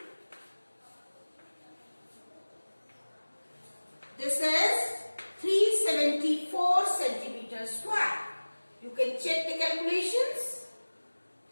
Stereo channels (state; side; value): inverted; both; correlation -1.00